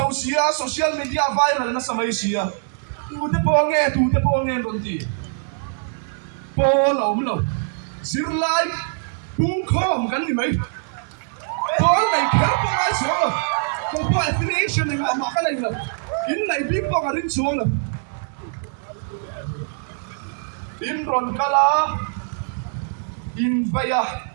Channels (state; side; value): silent; left; 64 dB below the other